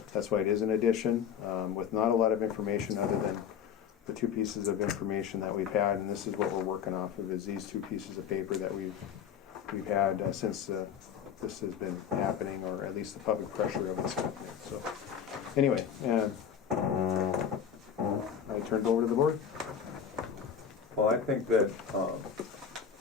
That's why it is an addition, with not a lot of information other than the two pieces of information that we've had, and this is what we're working off of, is these two pieces of paper that we've had since this has been happening, or at least the public pressure of it's happening. So anyway, I turned over to the board. Well, I think that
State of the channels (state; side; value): quieter; right; 7.9 dB